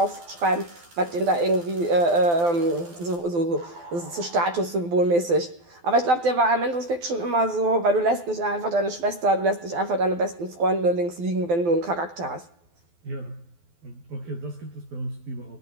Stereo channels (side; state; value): left; late; 12 ms